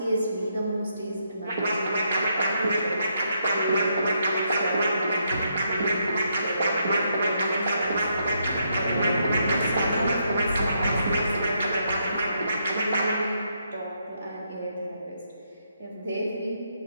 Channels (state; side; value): inverted; both; correlation -0.77